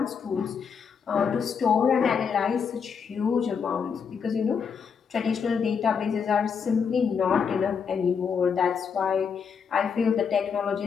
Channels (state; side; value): quieter; right; 6.4 dB